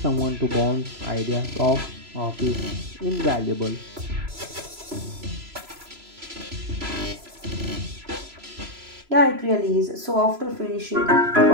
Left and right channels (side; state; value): left; late; 3.0 ms